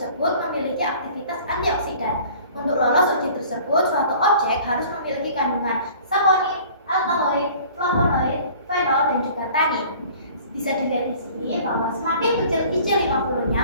memiliki aktivitas antioksidan. Untuk lolos uji tersebut, suatu objek harus memiliki kandungan saponin, alkaloid, flavonoid, fenol, dan juga tannin. Bisa dilihat di sini bahwa semakin kecil IC50-nya,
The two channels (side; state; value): both; inverted; correlation -0.49